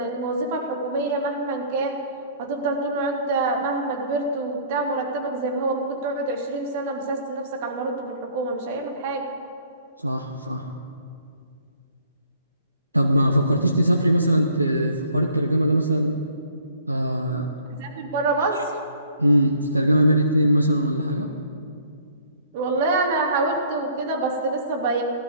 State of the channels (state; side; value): inverted; both; correlation -0.57